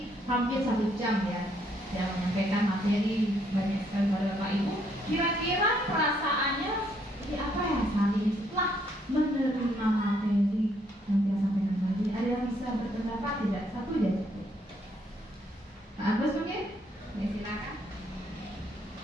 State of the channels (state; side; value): normal; both; correlation 0.70